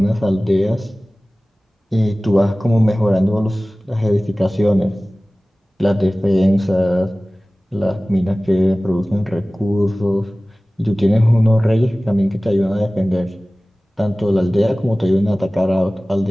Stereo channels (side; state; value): both; normal; correlation 0.98